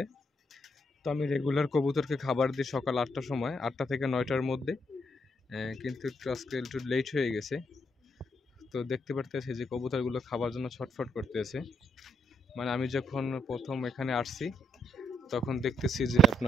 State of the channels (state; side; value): normal; both; correlation 0.77